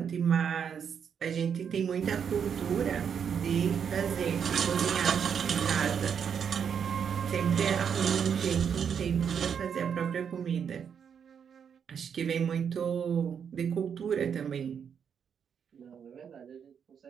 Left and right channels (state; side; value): quieter; left; 7.4 dB